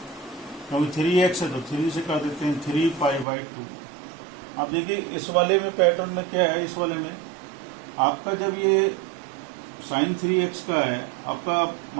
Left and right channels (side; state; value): left; drops out; at 3.2 s